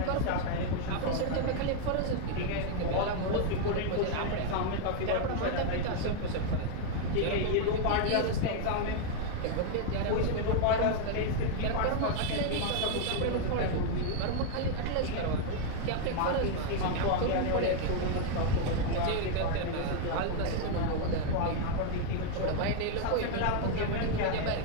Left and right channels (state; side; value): different; both; correlation 0.00